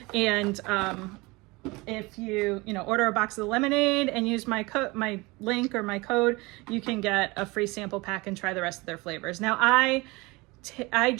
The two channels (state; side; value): quieter; left; 23.8 dB